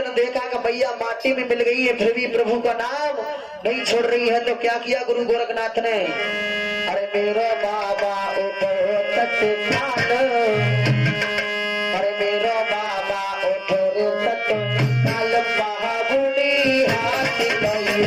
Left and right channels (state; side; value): identical; both; correlation 1.00